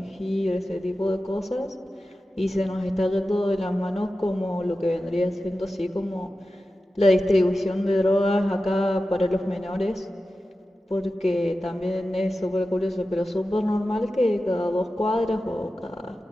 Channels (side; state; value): both; normal; correlation 0.93